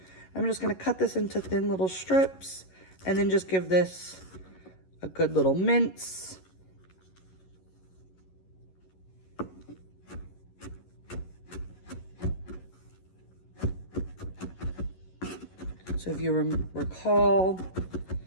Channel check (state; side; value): late; right; 11 ms